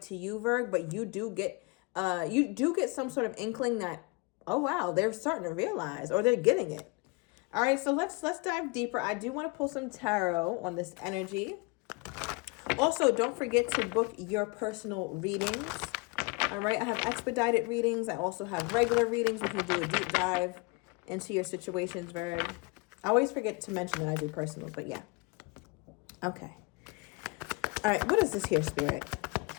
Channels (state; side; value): quieter; right; 28.3 dB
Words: to you, Virg, but you do get some sort of inkling that, oh wow, they're starting to realize, or they're getting it. All right, so let's dive deeper. I do want to pull some tarot on this energy. Also, don't forget to book your personal readings. All right, I have expedited readings. I also have regular readings. We can do a deep dive into your situations, Virg. I always forget to mention that I do personals, but yeah. Okay. All right, what is this here, Spirit?